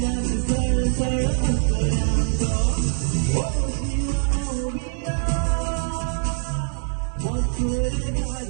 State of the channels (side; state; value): left; silent; digital silence